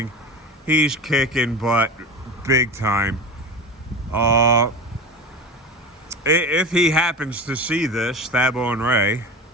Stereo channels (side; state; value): both; normal; correlation 0.29